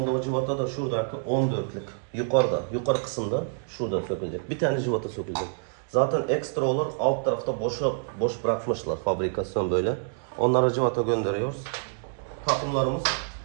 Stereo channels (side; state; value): left; silent; digital silence